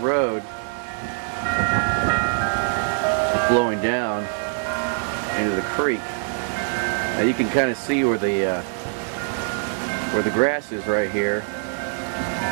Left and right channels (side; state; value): left; silent; digital silence